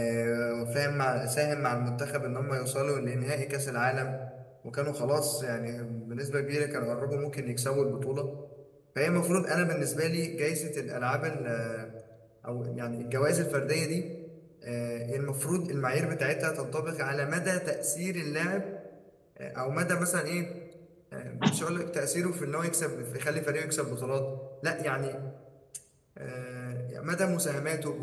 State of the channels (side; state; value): both; identical; correlation 1.00